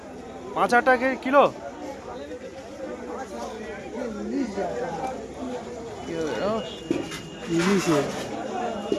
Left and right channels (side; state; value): both; identical; correlation 1.00